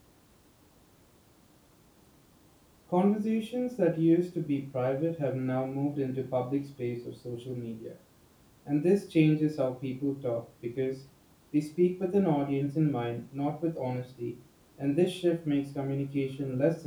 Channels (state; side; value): identical; both; correlation 1.00